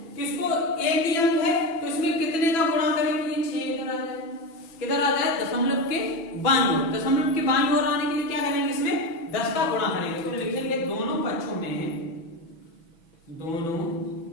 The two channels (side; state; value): right; late; 6.1 ms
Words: कि इसको एक ही अंक है तो इसमें कितने का गुणा करेंगे, ये 6 इधर आ जाए, किधर आ जाए, दशमलव के बाईं ओर, दशमलव के बाईं ओर आने के लिए क्या करेंगे, इसमें 10 का गुणा करेंगे, तो लिखेंगे दोनों